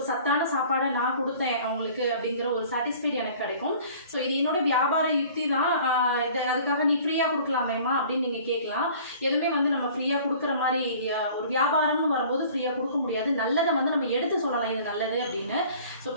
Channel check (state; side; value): inverted; both; correlation -0.49